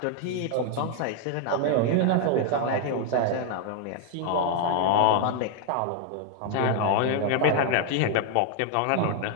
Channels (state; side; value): different; both; correlation 0.00